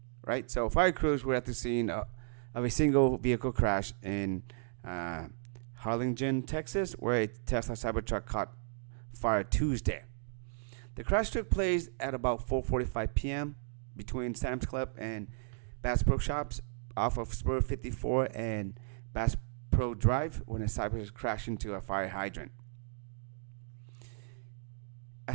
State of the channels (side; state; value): left; silent; digital silence